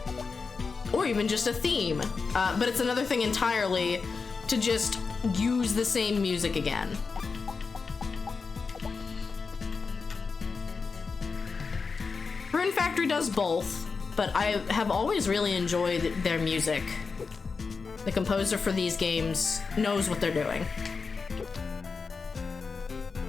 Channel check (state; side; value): quieter; right; 4.8 dB